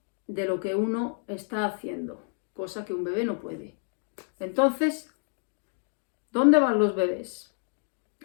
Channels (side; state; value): right; silent; 59 dB below the other